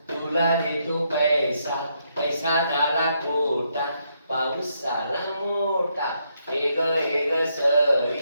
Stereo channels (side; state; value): both; inverted; correlation -0.77